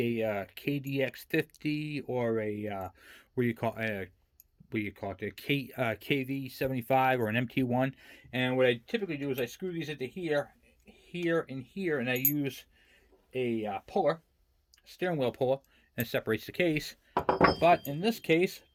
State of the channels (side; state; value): both; identical; correlation 1.00